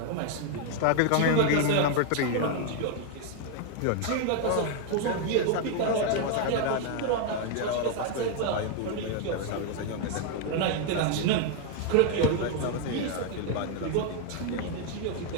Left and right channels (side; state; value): both; different; correlation 0.00